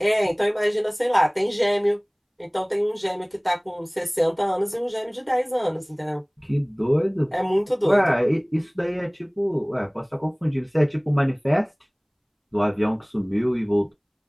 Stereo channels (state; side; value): identical; both; correlation 1.00